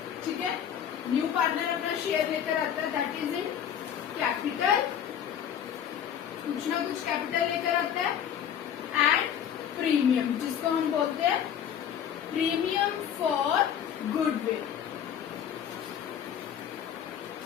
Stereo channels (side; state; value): right; quieter; 9.1 dB